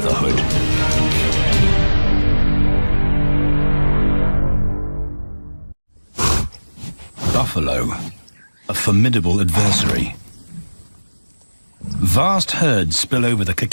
Buffalo, a formidable adversary. Vast herds spill over the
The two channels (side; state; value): both; inverted; correlation -1.00